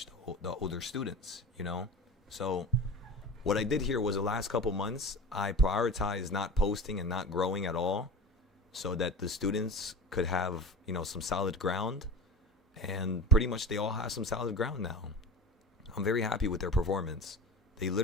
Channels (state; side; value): normal; both; correlation 0.33